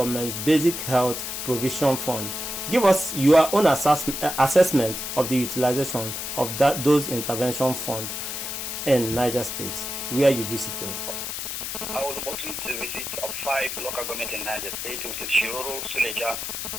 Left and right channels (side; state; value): left; noise; hiss, 5 dB below the sound